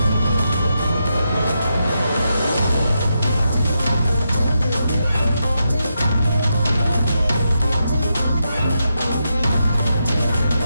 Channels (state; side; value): inverted; both; correlation -0.85